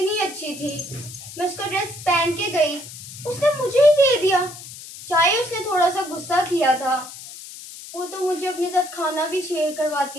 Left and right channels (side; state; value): left; noise; hiss, 14 dB below the sound